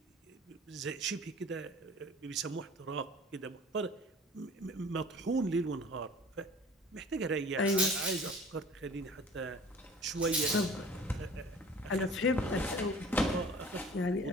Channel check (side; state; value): both; normal; correlation 0.46